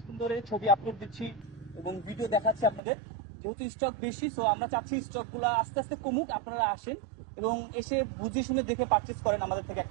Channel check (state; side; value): drops out; left; at 2.8 s